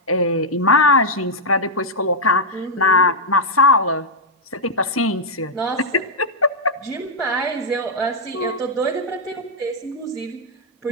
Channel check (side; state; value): both; normal; correlation -0.04